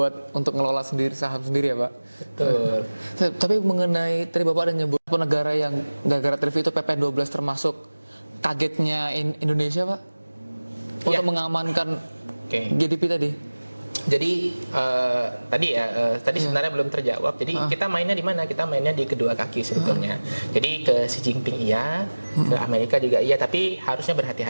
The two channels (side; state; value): both; inverted; correlation -1.00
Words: untuk ngelola sendiri saham sendiri ya Pak. Betul. Tapi mengenai tadi Bapak ada nyebut negara yang gara-gara tarif itu PP12 termasuk kagetnya Indonesia Pak untuk mengamankan GDP tadi. Jadi tadi sebenarnya belum terjawab. Jadi kita mainnya di mana? Kita mainnya di kedua kaki sebetulnya. Jadi ke Xi Jinping iya, ke Amerika juga iya, tapi harusnya